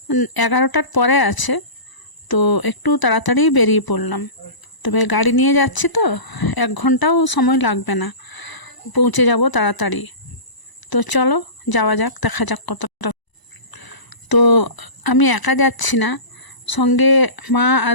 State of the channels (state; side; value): late; right; 1.0 ms